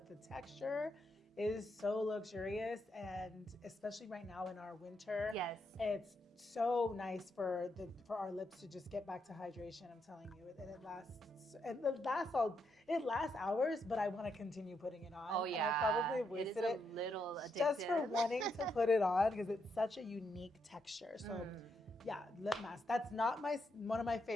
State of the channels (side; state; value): both; normal; correlation 0.80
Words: the texture is so luxurious, and especially right now in our winter, it's so nice for our lips to just get back to hydration. I'm telling you, and it lasts hours, but I want to continue putting it on. And I probably have wasted it a little addictive. Just for wanting to put it on because it's such a unique texture. So Yeah, lip mask. That's not one of my